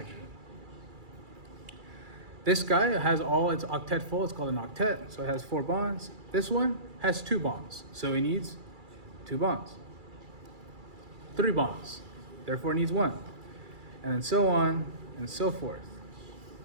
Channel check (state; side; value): late; left; 2.3 ms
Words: This guy has all its octet full, it's called an octet, so it has 4 bonds. This one has 2 bonds, so it needs 2 bonds. 3 bonds, therefore it needs 1. And then so on and so forth.